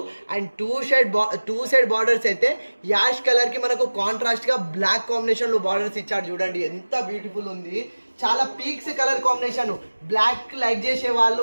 అండ్ టూ సైడ్ బార్డర్స్ అయితే యాష్ కలర్ కి మనకు కాంట్రాస్ట్ గా బ్లాక్ కాంబినేషన్ లో బార్డర్స్ ఇచ్చాడు. చూడండి ఎంత బ్యూటిఫుల్ ఉంది, చాలా peaks colour combination. Black like చేసే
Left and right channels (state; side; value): inverted; both; correlation -1.00